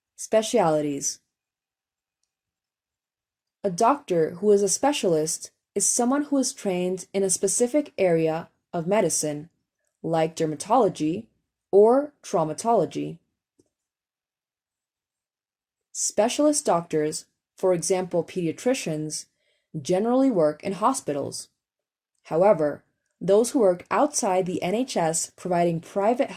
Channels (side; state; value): both; identical; correlation 1.00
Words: Specialities. A doctor who is a specialist is someone who is trained in a specific area of medicine, like dermatology or traumatology. Specialist doctors, for example pediatricians, generally work in hospitals. However, those who work outside the NHS providing private